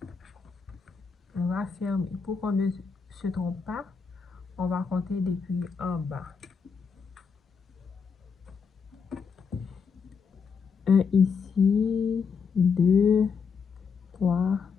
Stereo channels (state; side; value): quieter; right; 5.7 dB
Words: on va fermer. Pour qu'on ne se trompe pas, on va compter depuis en bas. 1 ici, 2, 3.